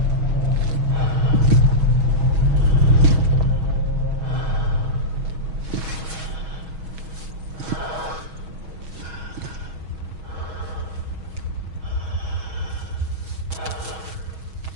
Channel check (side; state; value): left; late; 6.3 ms